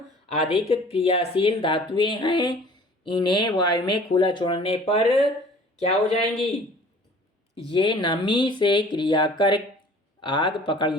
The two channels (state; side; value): normal; both; correlation 0.49